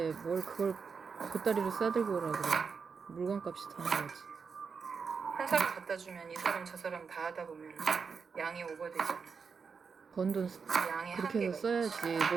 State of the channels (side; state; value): left; quieter; 5.6 dB